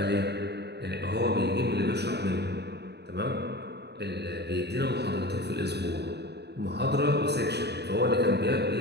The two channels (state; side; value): late; left; 0.48 ms